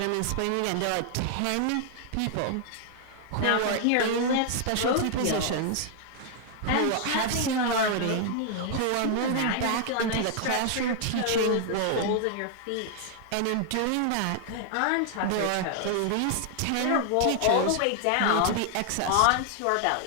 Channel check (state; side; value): different; both; correlation 0.00